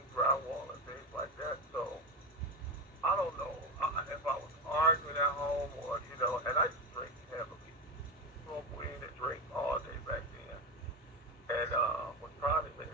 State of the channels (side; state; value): both; normal; correlation 0.17